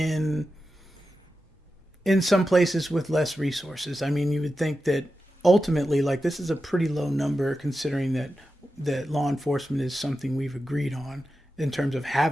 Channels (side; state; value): both; normal; correlation 0.91